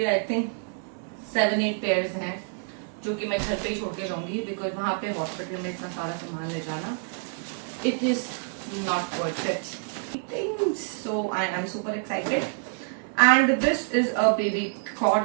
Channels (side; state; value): left; silent; 58 dB below the other